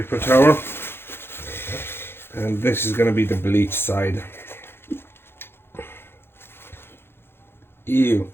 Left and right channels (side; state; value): right; late; 0.11 ms